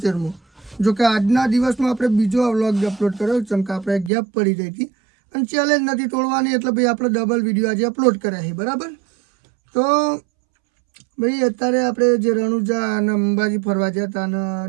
જો કે આજના દિવસમાં આપણે બીજો વ્લોગ અપલોડ કર્યો, જેમ કે આપણે ગેપ પડી ગઈ હતી અને ચેલેન્જ નથી તોડવાની, એટલે ભાઈ આપણે ડબલ વિડીયો આજે અપલોડ કર્યા છે, બરાબર। તો ભાઈ અત્યારે આપણે જે રણુજા અને અંબાજી ફરવા ગયા હતા અને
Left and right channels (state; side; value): drops out; left; at 4.1 s